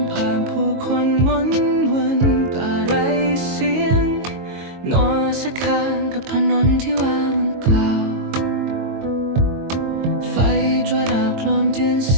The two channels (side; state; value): left; late; 22 ms